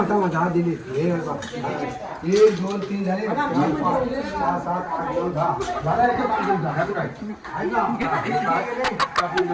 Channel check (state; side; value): identical; both; correlation 1.00